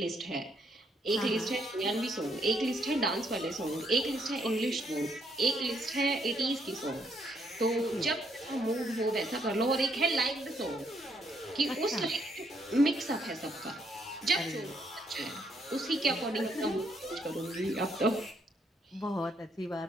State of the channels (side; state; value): both; normal; correlation 0.73